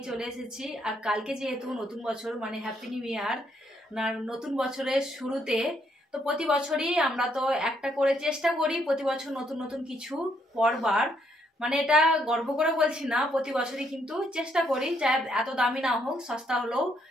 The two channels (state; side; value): normal; both; correlation 0.73